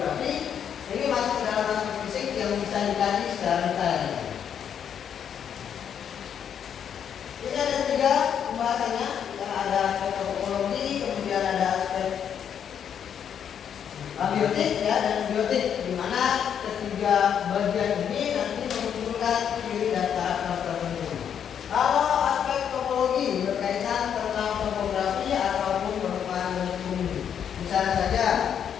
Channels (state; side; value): quieter; right; 8.4 dB